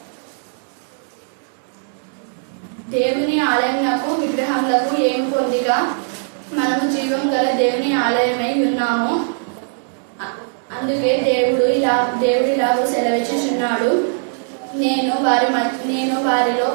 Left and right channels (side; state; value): left; silent; digital silence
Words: దేవుని ఆలయమునకు విగ్రహములకు ఏమి పొందిక? మనము జీవం గల దేవుని ఆలయమై ఉన్నాము. అందుకే దేవుడు ఇలాగూ సెలవిచ్చుచున్నాడు, నేను